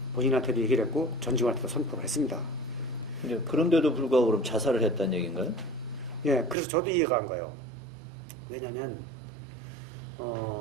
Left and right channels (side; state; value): left; drops out; at 6.6 s